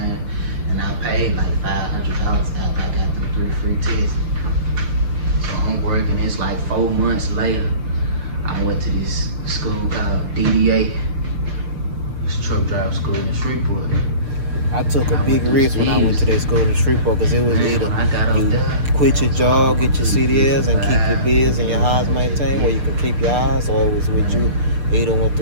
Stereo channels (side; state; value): left; late; 6.7 ms